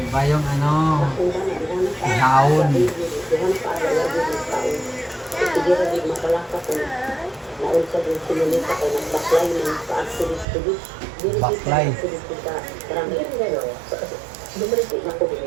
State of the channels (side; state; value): left; drops out; at 10.5 s